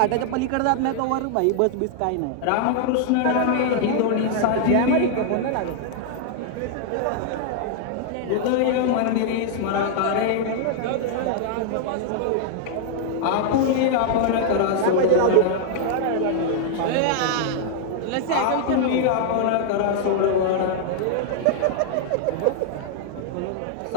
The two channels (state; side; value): different; both; correlation -0.01